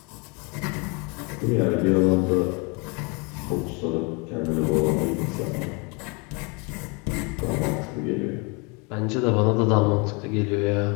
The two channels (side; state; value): right; quieter; 31.1 dB